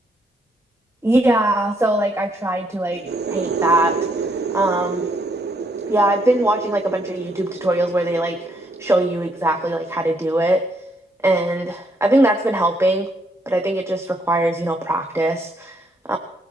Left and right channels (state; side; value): normal; both; correlation 0.72